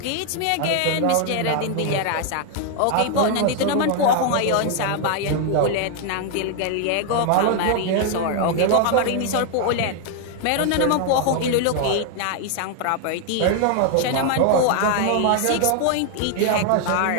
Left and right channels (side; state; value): both; different; correlation 0.00